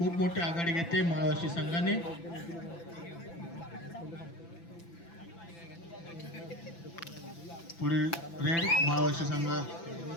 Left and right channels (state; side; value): late; right; 5.9 ms